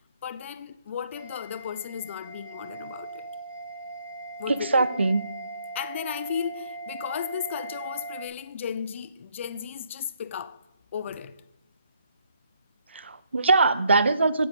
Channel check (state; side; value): inverted; both; correlation -0.69